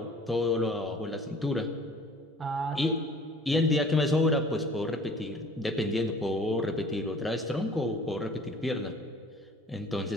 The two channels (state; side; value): normal; both; correlation 0.50